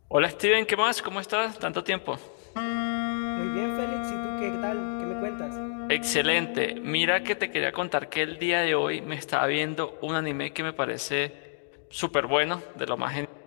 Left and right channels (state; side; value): silent; right; digital silence